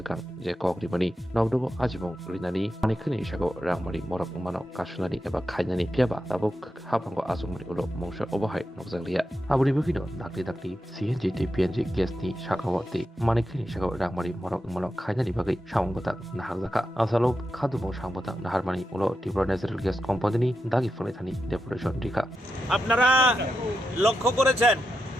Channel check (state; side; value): normal; both; correlation 0.88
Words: Je Kokrimani Nogdogo Ajimong Rinani Manikani Shago Rangmari Morok Mano Kashunani Eba Kainani Piaba Tabuk Hapango Azumri Ulo Mongsha Overhai Nogzalia Aburi Bukino Dakli CNG PNG Gasni Shakawati Manikani Shago Rangmari Morok Mano Kainani Bagi Shangbotak Nahazaka Asalo Kadumo Shangbotak Naharmani Ulo Tripura Natural Gas Company Dagi Fonethani Deputation Dika আপনারা লক্ষ্য করেছেন